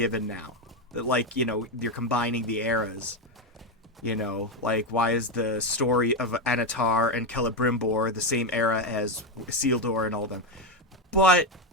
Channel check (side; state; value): both; normal; correlation 0.09